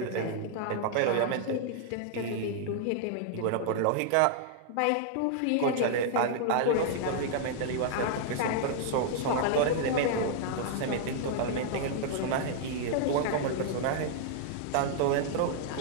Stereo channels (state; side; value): different; both; correlation -0.01